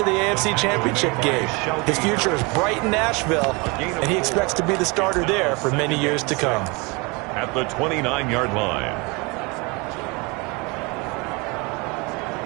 the AFC Championship game. His future is bright in Nashville, and he expects to be the starter there for many years to come. At the 29-yard line.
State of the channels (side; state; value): left; quieter; 27.9 dB